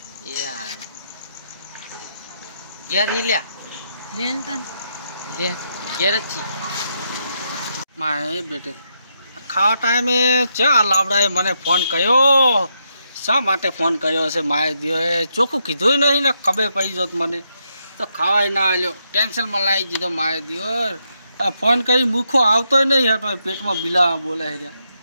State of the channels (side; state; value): both; inverted; correlation -0.80